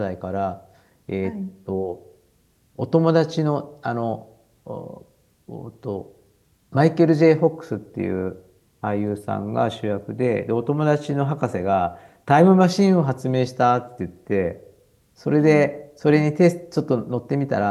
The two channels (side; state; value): both; identical; correlation 1.00